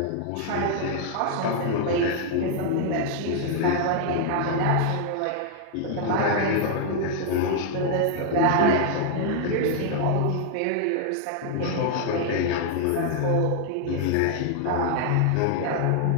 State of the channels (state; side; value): different; both; correlation 0.00